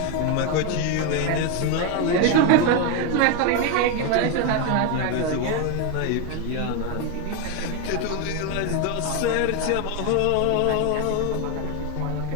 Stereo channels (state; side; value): different; both; correlation 0.02